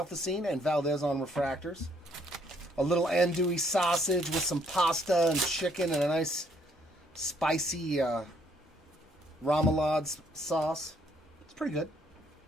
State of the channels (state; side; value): normal; both; correlation 0.68